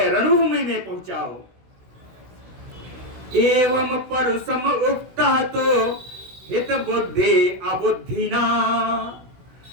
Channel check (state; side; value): late; left; 16 ms